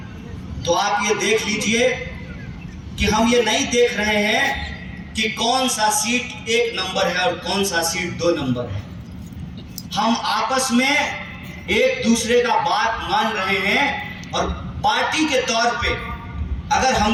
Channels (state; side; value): identical; both; correlation 1.00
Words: तो आप ये देख लीजिए कि हम ये नहीं देख रहे हैं कि कौन सा सीट 1 नंबर है और कौन सा सीट 2 नंबर है। हम आपस में एक दूसरे का बात मान रहे हैं और पार्टी के तौर पे अगर